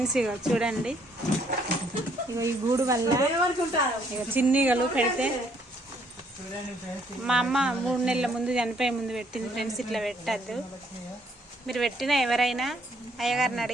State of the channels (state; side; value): normal; both; correlation 0.67